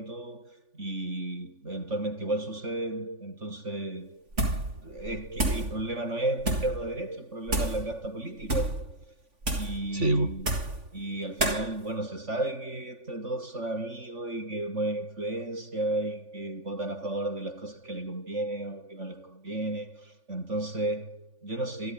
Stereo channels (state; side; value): late; left; 3.5 ms